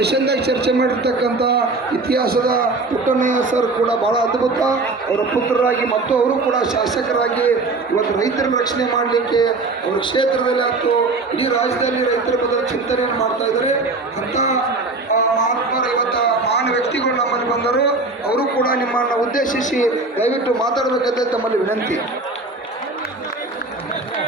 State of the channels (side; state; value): left; quieter; 3.5 dB